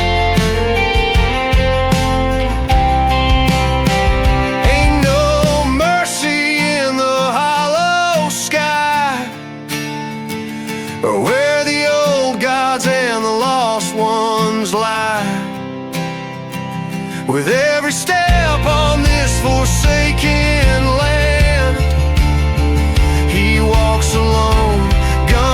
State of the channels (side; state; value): both; identical; correlation 1.00